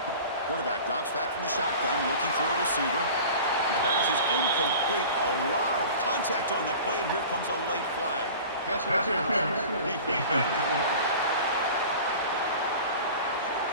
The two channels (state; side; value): inverted; both; correlation -0.39